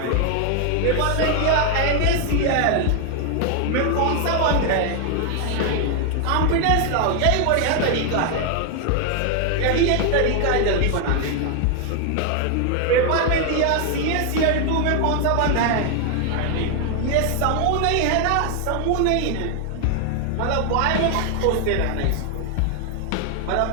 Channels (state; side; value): different; both; correlation 0.00